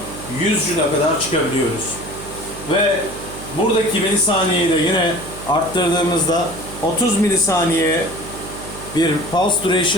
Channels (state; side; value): noise; right; hum, 13 dB below the sound